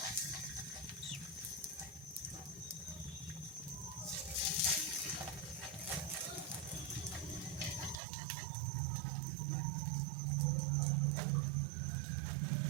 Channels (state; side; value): drops out; left; at 8.0 s